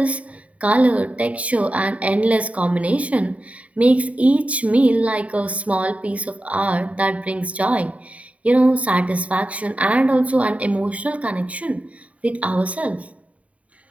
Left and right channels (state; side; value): late; left; 0.067 ms